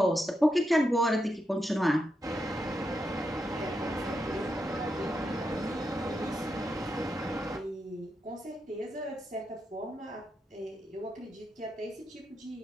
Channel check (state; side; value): normal; both; correlation 0.85